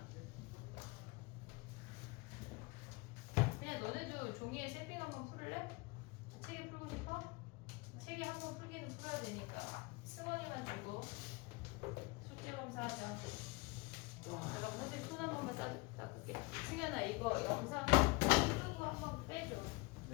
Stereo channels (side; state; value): right; quieter; 25.2 dB